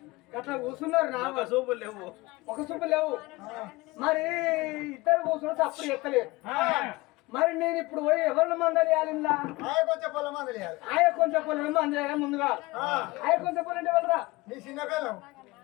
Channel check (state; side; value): quieter; right; 21.8 dB